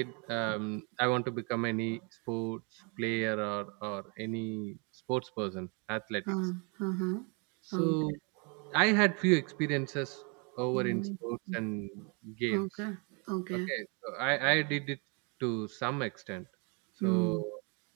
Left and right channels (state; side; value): quieter; left; 34.6 dB